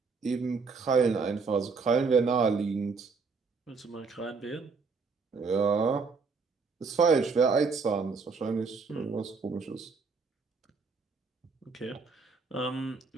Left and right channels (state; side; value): quieter; left; 4.7 dB